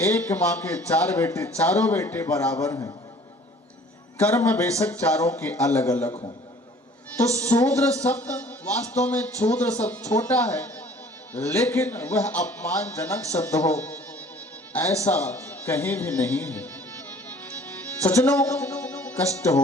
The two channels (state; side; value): normal; both; correlation 0.51